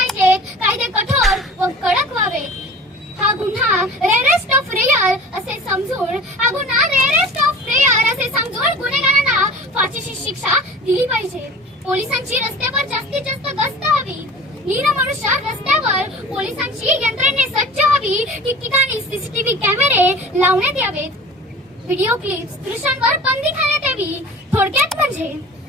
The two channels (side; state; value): both; normal; correlation 0.41